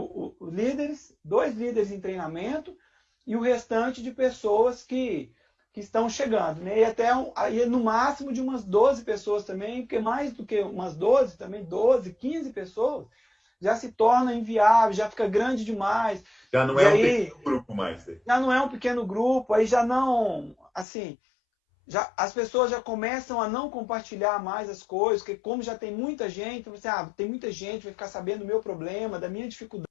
2 líderes em treinamento e o restante de pessoas que estão chegando, né? E até aí no máximo de umas 12 pessoas também, porque mais do que umas 12, também 12, 15 pessoas, já se torna inviável, já fica grande demais. Já não é um pequeno grupo mais. Já não é um pequeno grupo, aí já não, assim, as pessoas já começam a não compartilhar mais as coisas, porque como já tem muita gente, você, tem muita gente, vai ficar sabendo do meu problema, da minha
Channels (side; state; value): right; drops out; at 20.9 s